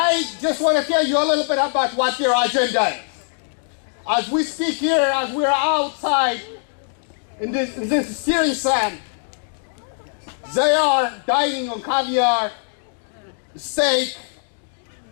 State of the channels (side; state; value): right; silent; 64 dB below the other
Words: just want to tell you a little bit about what their agenda is. As we speak here, as we're outside in this steering sand, they are dining on caviar, steak,